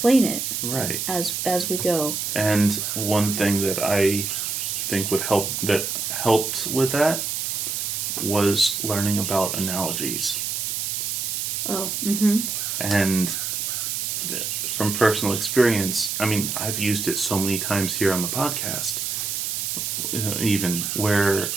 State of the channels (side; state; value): right; noise; hiss, 2 dB below the sound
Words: it. Right. As we go. And one thing that I think helped with that was learning about analogies. Oh. Mm-hmm. And from personal experience, I mean, I've used it so many times here on the podcast, even where